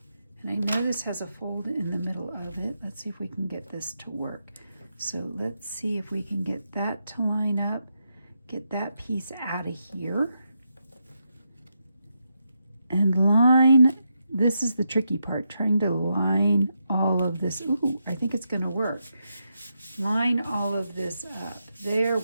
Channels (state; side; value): inverted; both; correlation -0.84